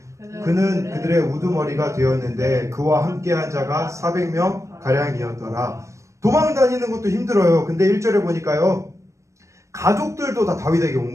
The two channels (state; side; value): late; left; 0.15 ms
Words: 그는 그들의 우두머리가 되었는데 그와 함께한 자가 400명 가량이었더라. 도망 다니는 것도 힘들어요. 근데 1절에 보니까요. 가족들도 다 다윗에게